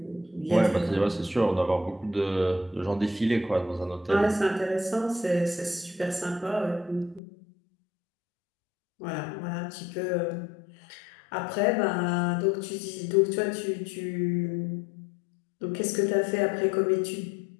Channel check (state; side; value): drops out; right; at 7.2 s